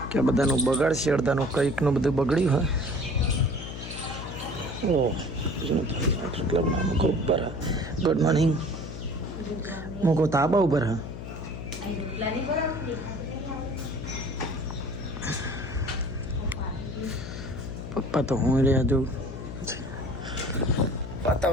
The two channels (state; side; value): noise; left; hum, 9 dB below the sound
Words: કે બધાનું બગાડશે અડધાનું કંઈકનું બધું બગડ્યું હા. ઓ ક્લબના મૂકો ઉપર હા. ગુડ મોર્નિંગ મૂકો તાબા ઉપર હા. પપ્પા તો હું રહ્યા જો